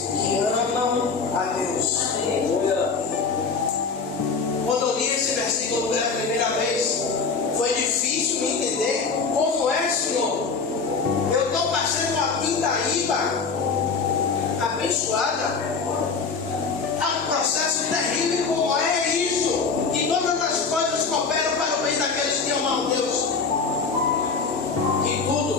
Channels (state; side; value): quieter; right; 4.9 dB